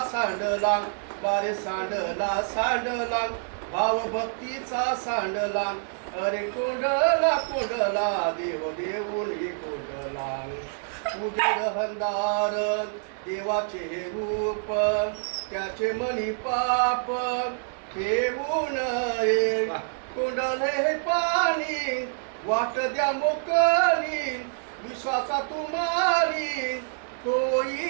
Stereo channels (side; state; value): left; silent; digital silence